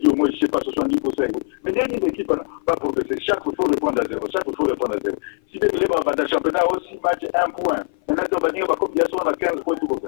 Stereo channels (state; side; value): silent; right; 57 dB below the other